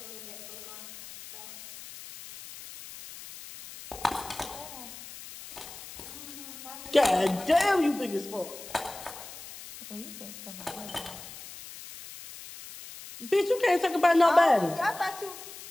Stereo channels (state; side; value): noise; left; hiss, 14 dB below the sound